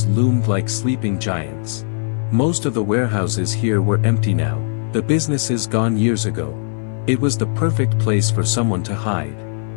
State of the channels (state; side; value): silent; right; digital silence